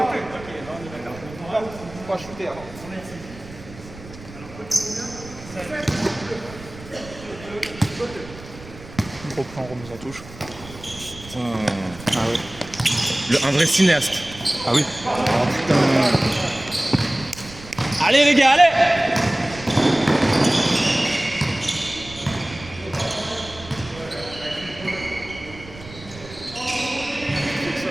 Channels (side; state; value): right; noise; rumble, 17 dB below the sound